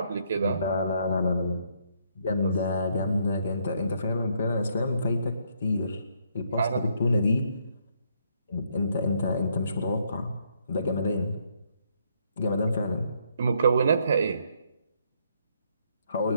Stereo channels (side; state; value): both; inverted; correlation -0.72